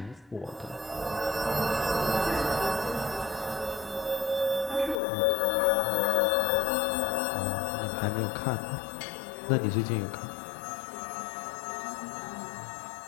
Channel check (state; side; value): drops out; right; at 5.0 s